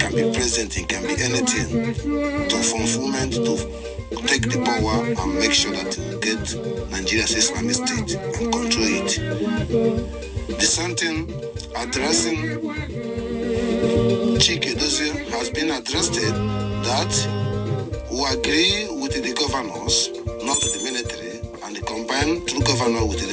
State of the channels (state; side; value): identical; both; correlation 1.00